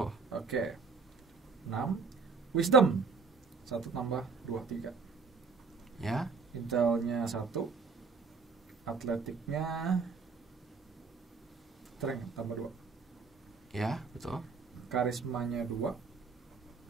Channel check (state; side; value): quieter; left; 4.7 dB